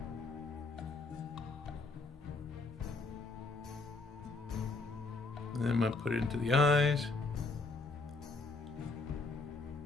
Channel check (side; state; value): right; quieter; 3.7 dB